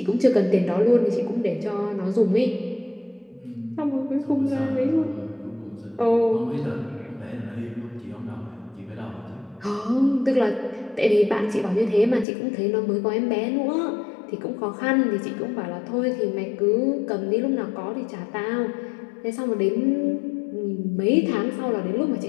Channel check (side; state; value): right; drops out; at 12.2 s